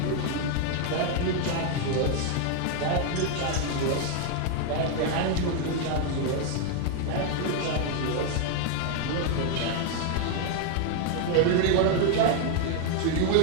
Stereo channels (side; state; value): both; different; correlation 0.00